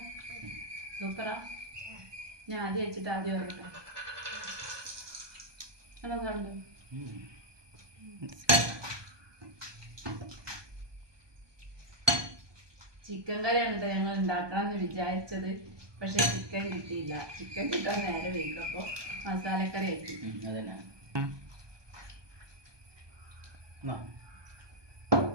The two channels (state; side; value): late; left; 1.2 ms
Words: സൂപ്പറാ. ഞാൻ ആദ്യം വെച്ചിട്ട് ആദ്യം പറയട്ടെ. കണ്ടു ചിക്കൻ കറിയാണ് കേട്ടോ ഞങ്ങൾ ഉണ്ടാക്കാമെന്ന് വിചാരിച്ചത്. പക്ഷെ ചിക്കൻ കിട്ടിയില്ല. ചിക്കൻ കിട്ടാൻ നേരെ വയ്ക്കും. അപ്പോൾ മസാലക്കറി ആക്കി. അതന്നെ